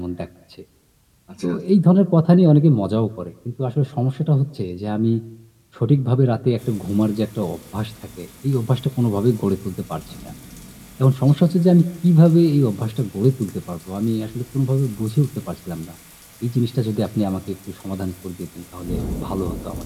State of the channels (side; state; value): both; identical; correlation 1.00